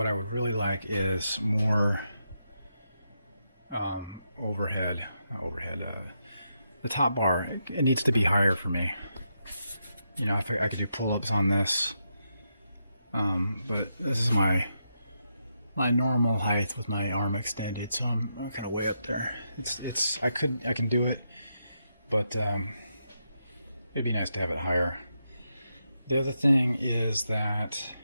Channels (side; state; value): both; inverted; correlation -0.83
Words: I would really like is more overhead. The top bar, it needs to be higher for me. You know, if I could do pull-ups on this, but this is my normal height with my arm extended, so I'm kind of way up there. I can do it, but it'd be nice to have it higher. The other thing is that